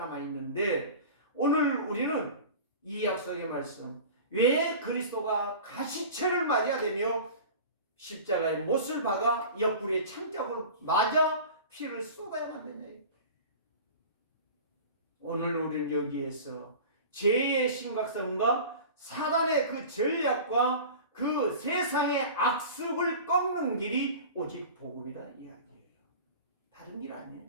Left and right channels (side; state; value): both; inverted; correlation -0.37